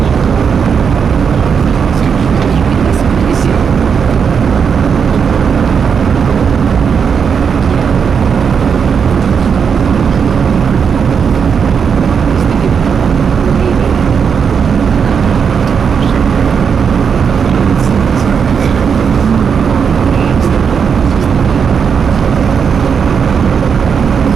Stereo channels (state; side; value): quieter; left; 6.6 dB